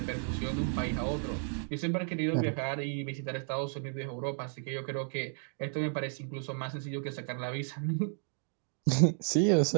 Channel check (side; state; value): left; silent; 56 dB below the other